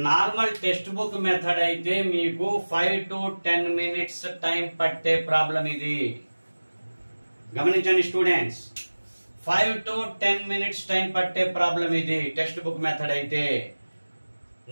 Normal text book method అయితే మీకు 5 to 10 minutes టైం పట్టే ప్రాబ్లం ఇది. గమనించండి స్టూడెంట్స్, 5 to 10 minutes టైం పట్టే ప్రాబ్లం ఇది టెక్స్ట్ బుక్ మెథడ్ అయితే.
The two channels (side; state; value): both; inverted; correlation -1.00